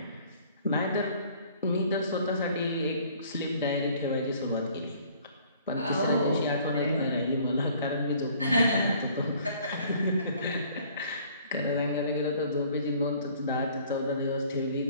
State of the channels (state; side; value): inverted; both; correlation -0.56